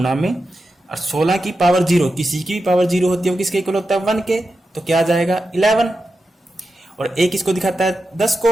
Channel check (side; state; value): both; normal; correlation 0.90